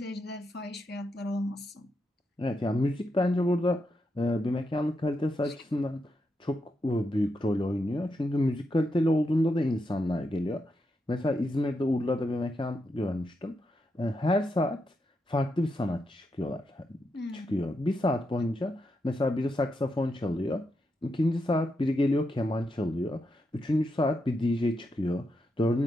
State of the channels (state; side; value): normal; both; correlation 0.84